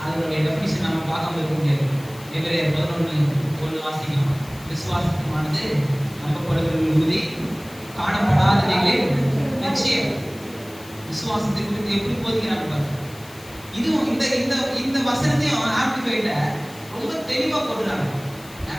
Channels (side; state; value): left; noise; hiss, 20 dB below the sound